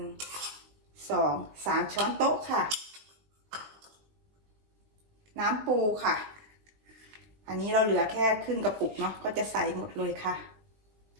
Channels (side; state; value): left; late; 20 ms